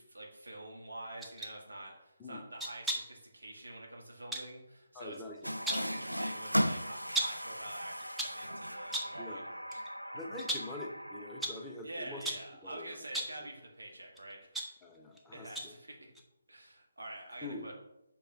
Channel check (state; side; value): inverted; both; correlation -0.62